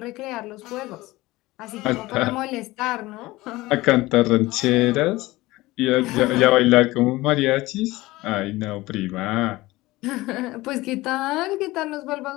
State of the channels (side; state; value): right; quieter; 19.4 dB